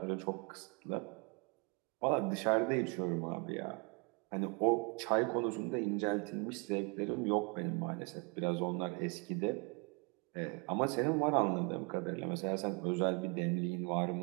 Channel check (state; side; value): quieter; left; 32.5 dB